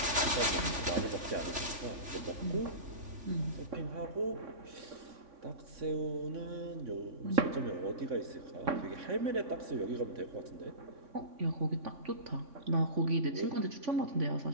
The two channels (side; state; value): left; late; 3.4 ms